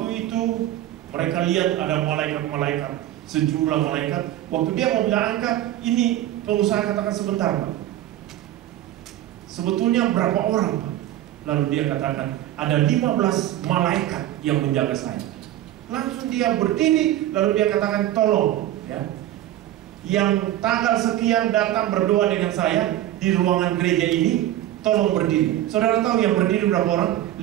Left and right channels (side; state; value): left; quieter; 13.5 dB